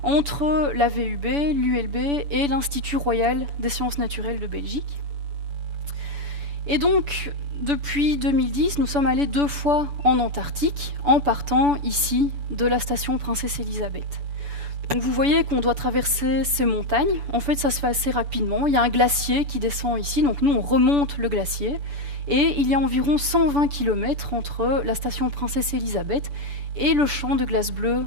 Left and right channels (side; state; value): left; late; 7.0 ms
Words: Entre la VUB, l'ULB et l'Institut royal des sciences naturelles de Belgique. Et donc, depuis 2010, nous sommes allés 2 fois en Antarctique, en partant ici de la station Princesse Elisabeth. Donc vous voyez qu'on doit traverser ces montagnes. En fait, ça se fait assez rapidement. Il y a un glacier qui descend ici, donc nous on remonte le glacier. Et il y a environ 120 km entre la station Princesse Elisabeth et le champ de glace bleue